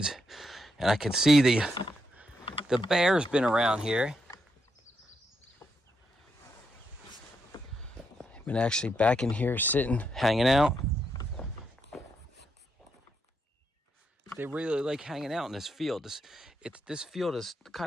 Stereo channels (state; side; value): normal; both; correlation 0.80